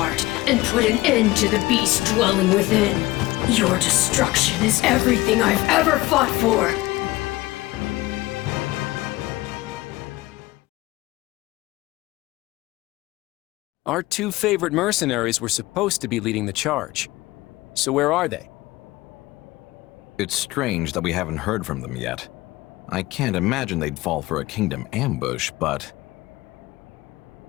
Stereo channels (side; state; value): right; quieter; 19.2 dB